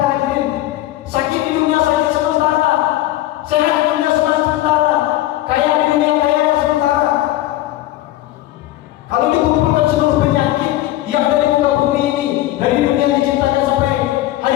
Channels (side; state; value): right; quieter; 15.3 dB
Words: hadirin. Sakit di dunia sakit sementara, sehat di dunia sementara, kaya di dunia kaya sementara. Kalau dikumpulkan seluruh penyakit yang ada di muka bumi